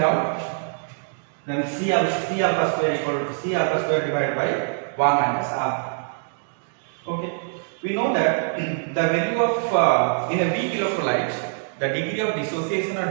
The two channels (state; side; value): silent; left; digital silence